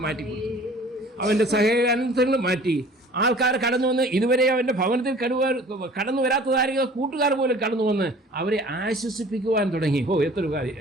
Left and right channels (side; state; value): both; normal; correlation 0.48